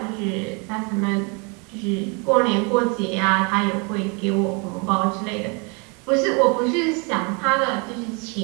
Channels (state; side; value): quieter; left; 32.8 dB